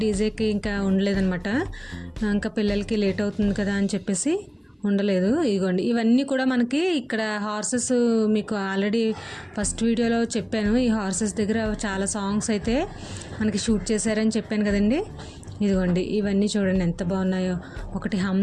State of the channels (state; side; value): identical; both; correlation 1.00